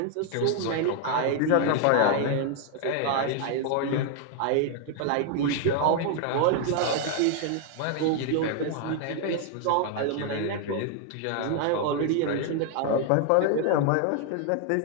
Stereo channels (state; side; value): different; both; correlation 0.00